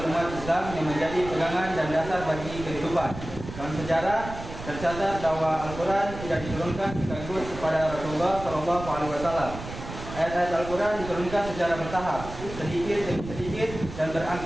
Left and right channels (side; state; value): right; noise; rumble, 10 dB below the sound